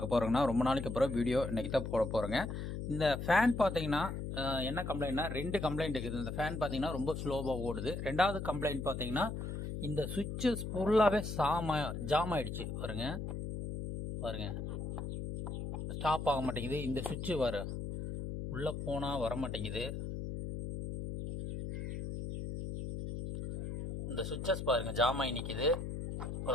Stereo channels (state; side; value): noise; left; hum, 5 dB below the sound